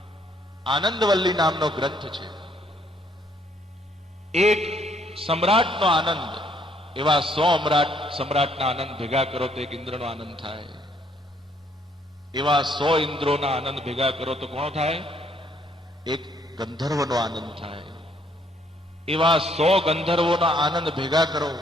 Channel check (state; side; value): normal; both; correlation 0.67